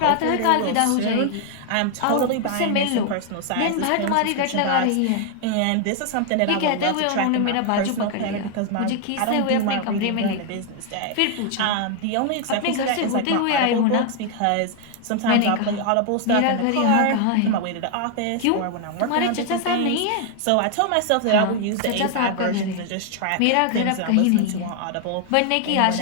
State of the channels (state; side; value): different; both; correlation 0.00